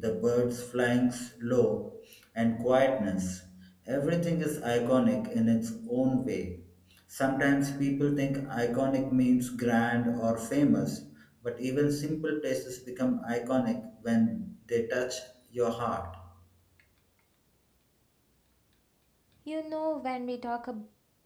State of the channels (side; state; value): both; identical; correlation 1.00